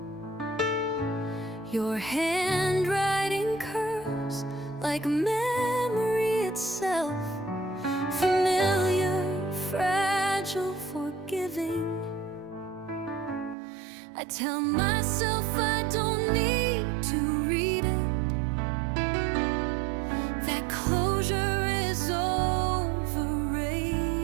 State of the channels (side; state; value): left; drops out; at 13.6 s